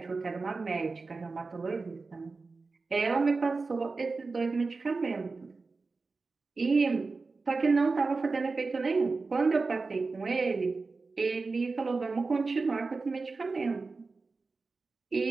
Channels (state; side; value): quieter; left; 4.0 dB